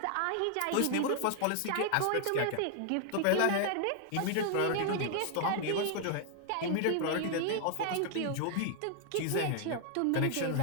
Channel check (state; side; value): different; both; correlation 0.00